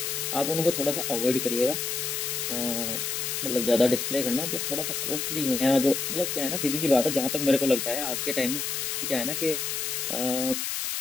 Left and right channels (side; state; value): left; noise; hiss, 2 dB below the sound